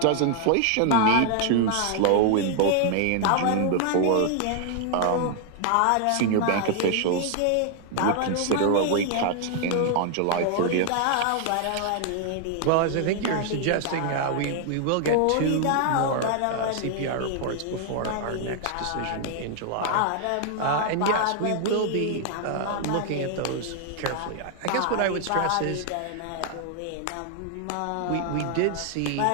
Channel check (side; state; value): both; different; correlation 0.00